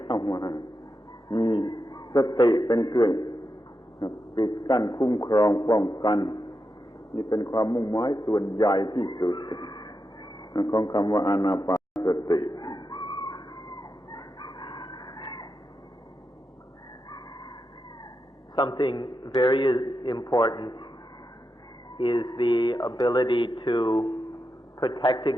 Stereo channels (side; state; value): both; normal; correlation 0.88